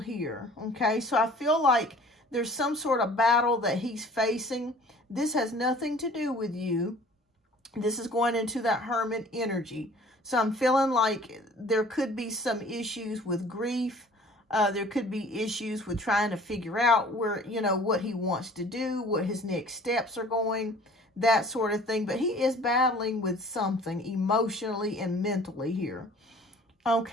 here, okay? So I feel like there's some sort of battle that he's facing. This has nothing to do with you. This is going into that Hermit energy. So I'm feeling like there could be some issues with grief. There could be issues with trying to figure out where, you know, what he wants to do, what his next steps are going, that sort of thing. But he is battling with something emotionally and mentally here.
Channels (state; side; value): normal; both; correlation 0.49